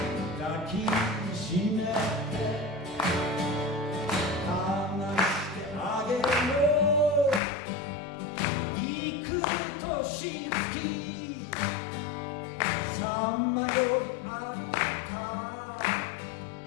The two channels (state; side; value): drops out; right; at 7.4 s